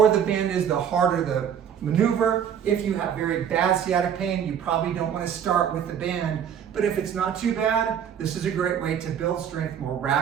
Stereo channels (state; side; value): quieter; left; 8.6 dB